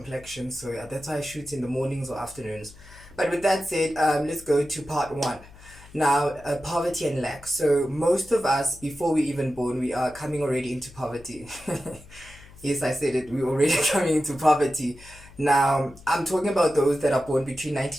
So yeah, that's why I shoot in the mornings or afternoons. But with that said, let's go to part one. Now, poverty and lack. So most of us, before we even born, we are coming already into poverty. Yes, I said it. We're already coming into poverty. Now, I'm talking about those that are born between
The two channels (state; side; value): noise; left; hum, 21 dB below the sound